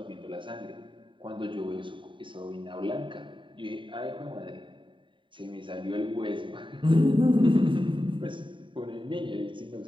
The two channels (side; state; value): left; late; 0.24 ms